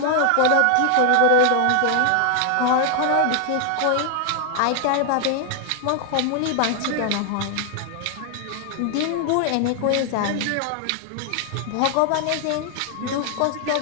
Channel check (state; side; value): different; both; correlation 0.00